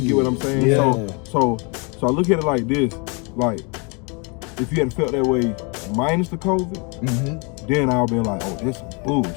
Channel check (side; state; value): right; quieter; 32.6 dB